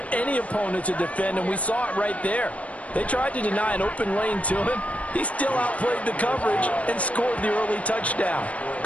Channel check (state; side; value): late; right; 0.066 ms